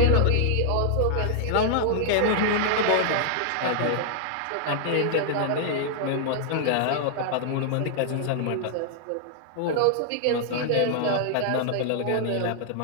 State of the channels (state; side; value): different; both; correlation -0.01